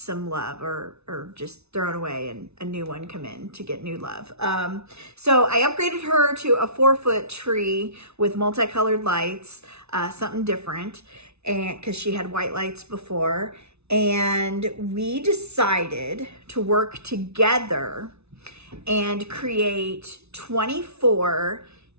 love, or just thrown away and a new one come in to get new love. So I upgraded her to a 4-foot tree with multicolored lights, something different. And because she had white lights before, and we decided to work together and create 24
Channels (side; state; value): left; late; 0.80 ms